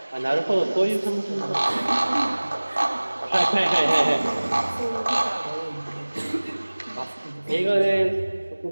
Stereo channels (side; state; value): both; inverted; correlation -1.00